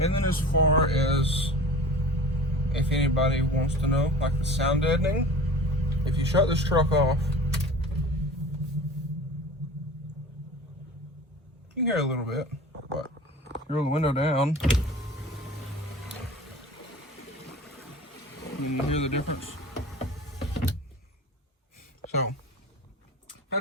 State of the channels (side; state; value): both; normal; correlation 0.39